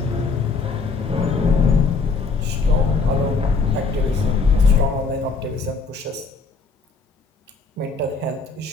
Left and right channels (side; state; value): right; quieter; 4.4 dB